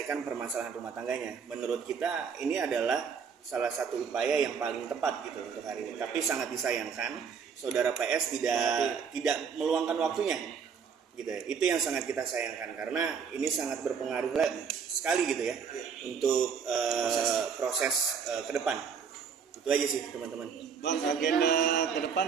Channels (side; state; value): left; quieter; 6.4 dB